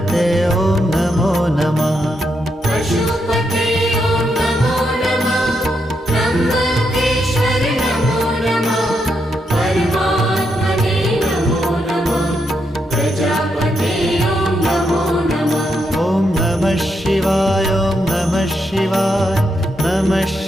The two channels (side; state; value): both; normal; correlation 0.81